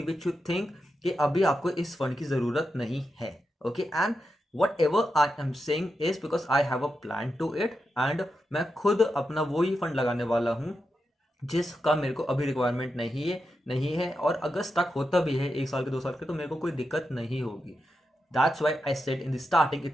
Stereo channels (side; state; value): both; normal; correlation 0.88